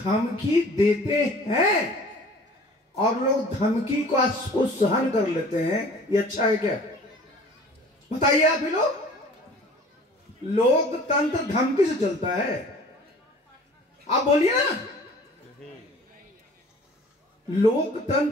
देते हैं और लोग धमकी को सहन कर लेते हैं। ये अच्छा है क्या? बताइए आप ही लोग। लोकतंत्र धमकी से चलता है? आप बोलिए ना।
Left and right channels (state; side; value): normal; both; correlation 0.48